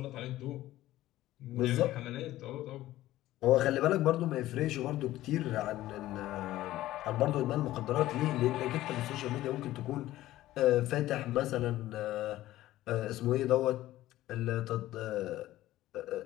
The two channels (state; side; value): quieter; right; 15.3 dB